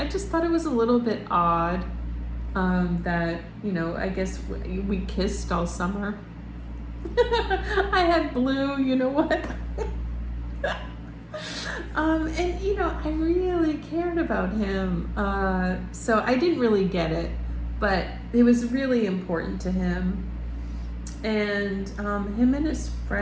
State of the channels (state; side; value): identical; both; correlation 1.00